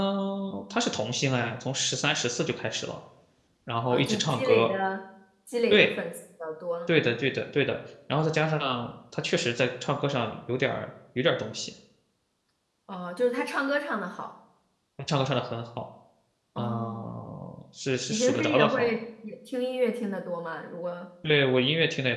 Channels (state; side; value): identical; both; correlation 1.00